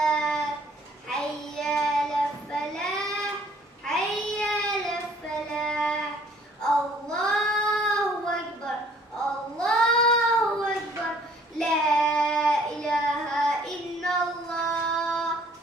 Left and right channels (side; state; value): both; normal; correlation 0.58